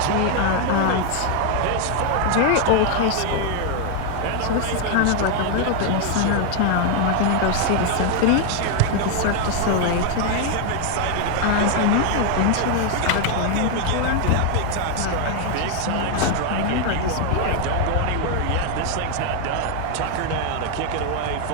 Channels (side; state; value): both; different; correlation 0.00